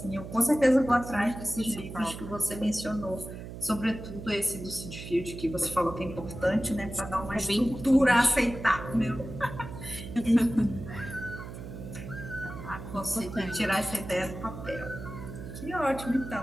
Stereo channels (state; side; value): noise; right; hum, 11 dB below the sound